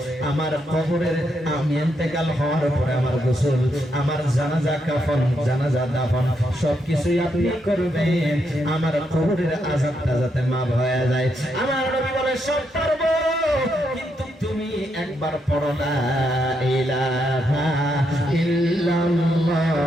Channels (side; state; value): both; normal; correlation 0.79